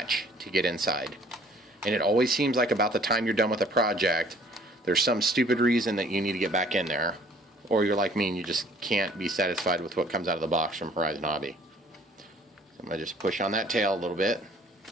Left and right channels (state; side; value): normal; both; correlation 0.56